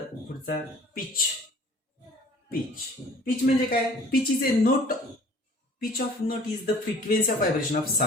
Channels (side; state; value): both; normal; correlation 0.51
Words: पुढचा पिच. पिच म्हणजे काय? Pitch is a note. Pitch of note is the frequency of vibration of